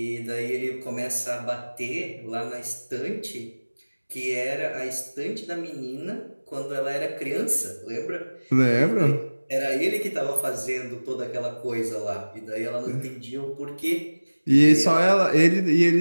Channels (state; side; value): inverted; both; correlation -1.00